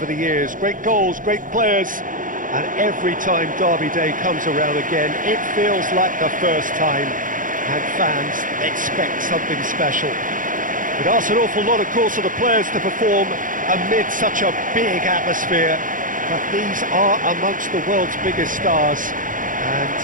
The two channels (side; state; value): left; late; 0.39 ms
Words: the years, great goals, great players, and every time Derby Day comes around again, it feels like the first time, and fans expect something special. It asks an awful lot, of course, of the players to perform amid such a big atmosphere, but these are amongst the world's biggest stars,